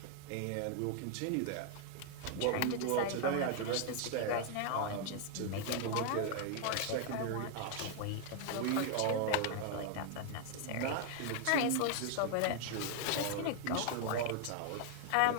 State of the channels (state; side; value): different; both; correlation 0.00